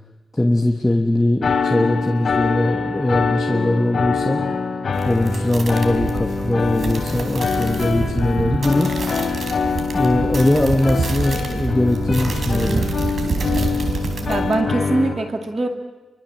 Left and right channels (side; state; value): both; normal; correlation 0.92